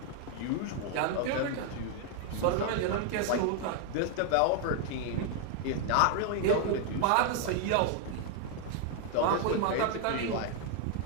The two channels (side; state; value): both; different; correlation 0.00